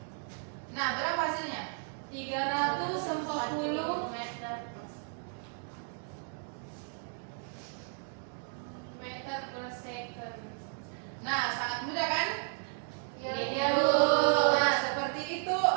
Nah, berapa hasilnya? 340 meter per second. Nah, sangat mudah kan? Iya, Bu. Bu. Nah, seperti itu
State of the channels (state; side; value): silent; left; 55 dB below the other